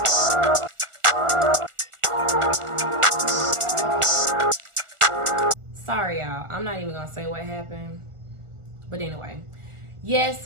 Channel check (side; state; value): left; late; 1.4 ms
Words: Sorry, y'all. I'm not even gonna say what happened. But anyway,